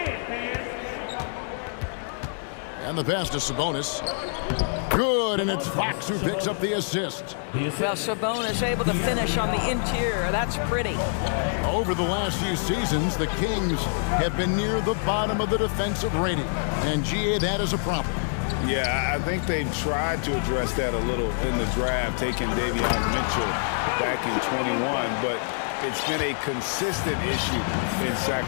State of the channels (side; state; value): right; silent; 59 dB below the other